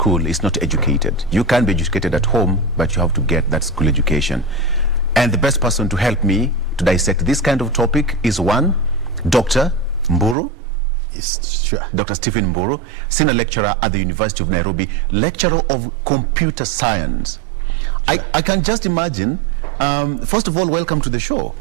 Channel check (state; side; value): drops out; left; at 10.4 s